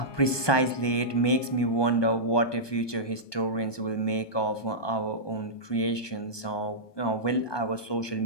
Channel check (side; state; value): right; late; 1.2 ms